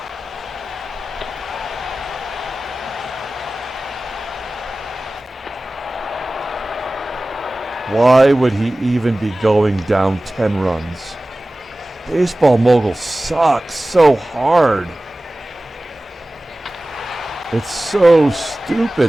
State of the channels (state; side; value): normal; both; correlation 0.97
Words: Why would he even be going down 10 runs? Baseball mogul sucks so hard. It's so